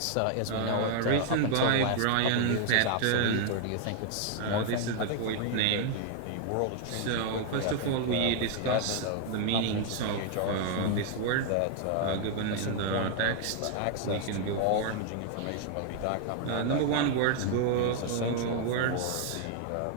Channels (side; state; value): both; different; correlation 0.00